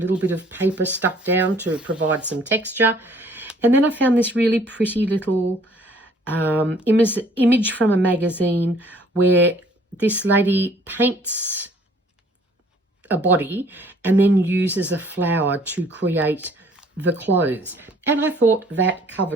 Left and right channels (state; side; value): normal; both; correlation 0.58